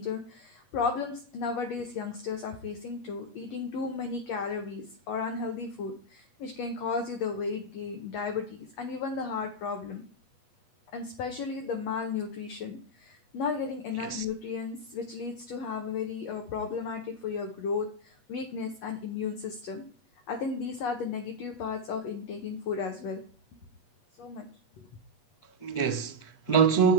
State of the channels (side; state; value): right; late; 8.3 ms